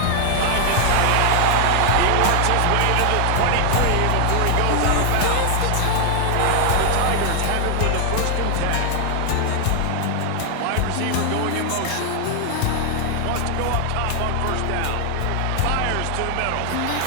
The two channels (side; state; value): both; different; correlation 0.00